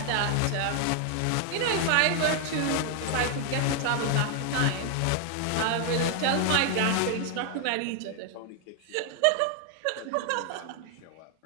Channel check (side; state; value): both; different; correlation 0.00